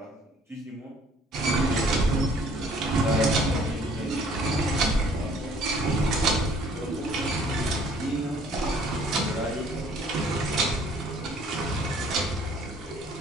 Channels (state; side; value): normal; both; correlation 0.57